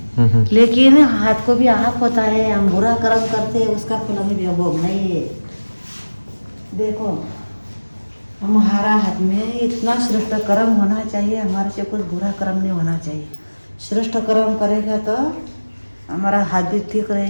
लेकिन हाथ को भी आँख होता है। हम बुरा कर्म करते हैं उसका फल हमें भोगना ही है। देखो हमारा हाथ में इतना श्रेष्ठ कर्म होना चाहिए, हमारे से कुछ बुरा कर्म नहीं होना चाहिए। श्रेष्ठ कर्म करेगा तो हमारा हाथ भी ठीक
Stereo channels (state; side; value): inverted; both; correlation -1.00